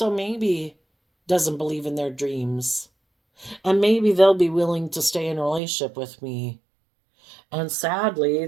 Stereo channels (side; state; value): left; drops out; at 5.6 s